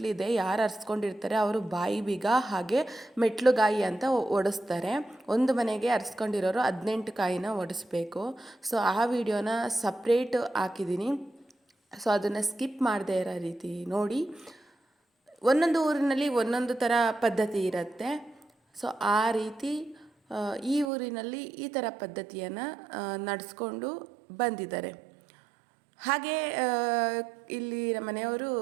ಯಾರು ಅರ್ಸ್ಕೊಂಡಿರ್ತಾರೆ ಅವರು ಬಾಯಿ ಬೀಗ ಹಾಗೆ ಮೆಟ್ಲುಗಾಯಿ ಅಂತ ಒಡಿಸ್ತಾರೆ. ಒಂದು ಮನೆಗೆ ಅರ್ಸ್ಕೊಂಡಿರೋರು 18 ಕಾಯಿನ ಒಡಿಸ್ಬೇಕು. ಆ ವಿಡಿಯೋನ ಸಪ್ರೇಟ್ ಹಾಕಿದ್ದೀನಿ. ಅದನ್ನು ಸ್ಕಿಪ್ ಮಾಡದೇ ಇರೋ ರೀತಿ ನೋಡಿ. ಒಂದೊಂದು ಊರಿನಲ್ಲಿ ಒಂದೊಂದು ಥರ ಪದ್ಧತಿ ಇರುತ್ತೆ. ಆ ರೀತಿ ಈ ಊರಿನಲ್ಲಿ ಈ ಥರ ಪದ್ಧತಿಯನ್ನು ನಡೆಸ್ಕೊಂಡು ಬಂದಿದ್ದಾರೆ. ಹಾಗೆ ಇಲ್ಲಿ ನಮ್ಮ ಮನೆಯವರು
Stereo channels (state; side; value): drops out; left; at 20.9 s